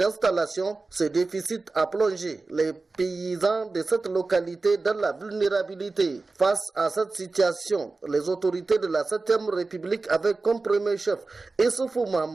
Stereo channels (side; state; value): left; quieter; 3.7 dB